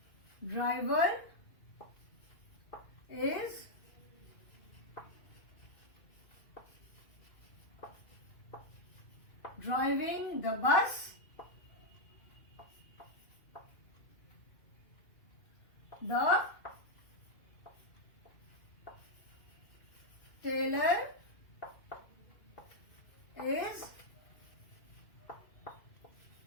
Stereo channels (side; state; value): right; late; 2.5 ms